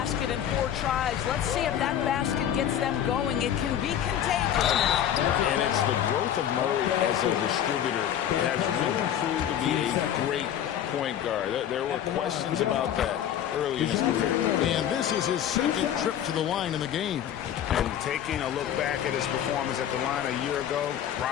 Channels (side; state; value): right; quieter; 10.2 dB